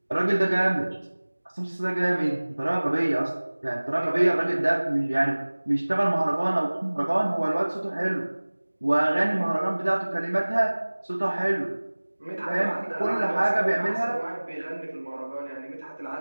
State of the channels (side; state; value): both; inverted; correlation -1.00